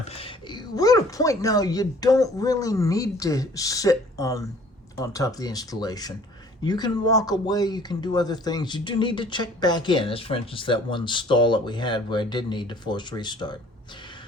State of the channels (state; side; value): normal; both; correlation 0.53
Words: We're at a point now you don't really need to sit on top of the installation. You can walk away, you can do other things. You do need to check back in, as for instance that one stall that we had where I did need to force restart.